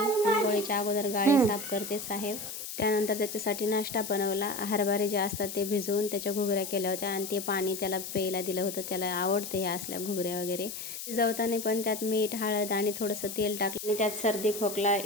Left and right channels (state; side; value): noise; left; hiss, 8 dB below the sound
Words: अगोदर गाडी साफ करते साहेब. त्यानंतर त्याच्यासाठी नाश्ता बनवला. हरभरे जे असतात ते भिजवून त्याच्या घुगऱ्या केल्या होत्या आणि ते पाणी त्याला प्यायला दिलं होतं. त्याला आवडते ह्या असल्या घुगऱ्या वगैरे. शिजवताना पण त्यात मीठ, हळद आणि थोडंसं तेल टाकलं आणि त्यात सर्दी खोकला